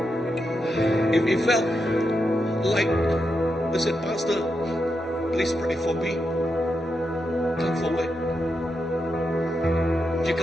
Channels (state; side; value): normal; both; correlation 0.85